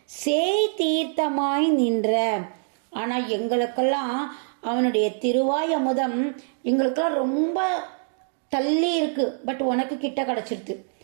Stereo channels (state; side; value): silent; left; digital silence